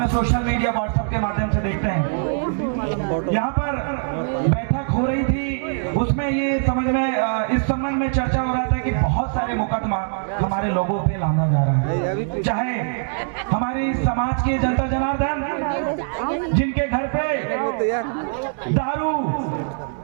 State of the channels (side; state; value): left; silent; digital silence